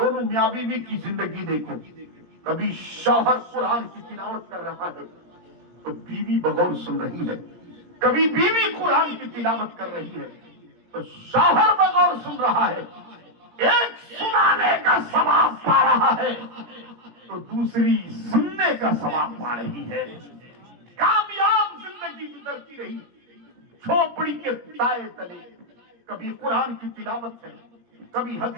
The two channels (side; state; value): left; late; 18 ms